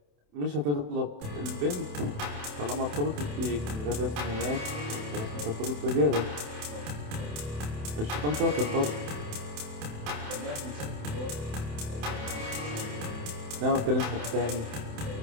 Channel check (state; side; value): late; left; 27 ms